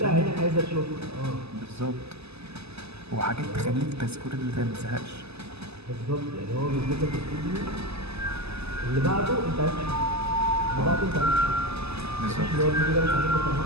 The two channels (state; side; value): late; left; 0.79 ms